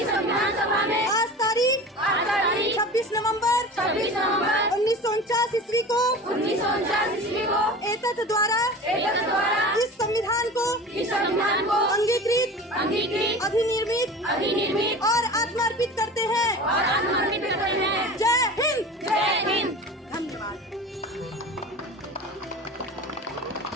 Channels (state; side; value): normal; both; correlation 0.35